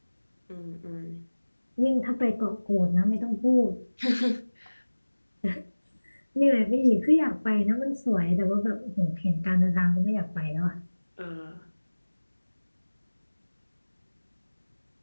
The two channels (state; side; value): inverted; both; correlation -1.00